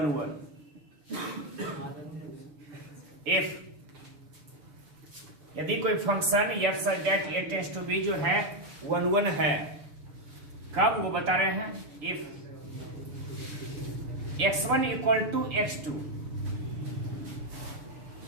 one if, यदि कोई function F such that A tends to B जो है 1 है, कब वो बता रहे हैं, if x1 equal to x2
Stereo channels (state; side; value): late; left; 7.0 ms